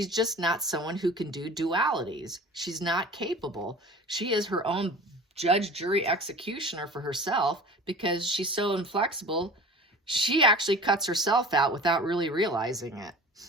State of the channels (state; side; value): normal; both; correlation 0.40